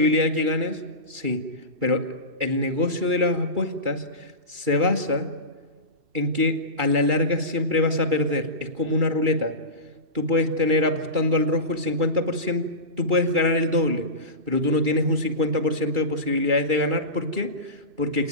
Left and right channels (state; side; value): late; left; 2.3 ms